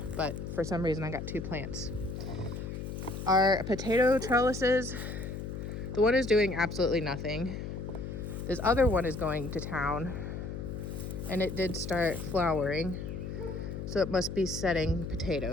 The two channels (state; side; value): noise; left; hum, 6 dB below the sound